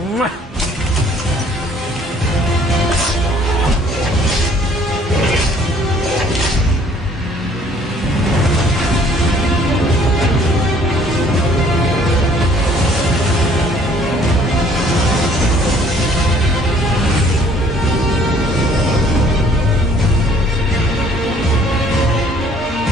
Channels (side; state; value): both; normal; correlation 0.58